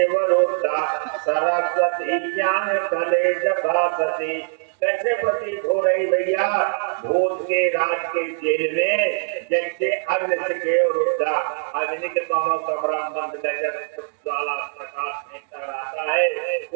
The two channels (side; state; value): left; silent; 64 dB below the other